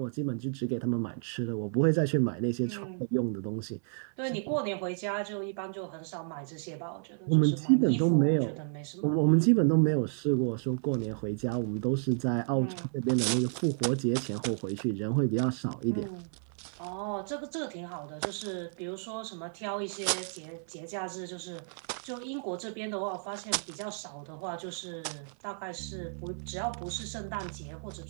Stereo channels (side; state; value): left; silent; 57 dB below the other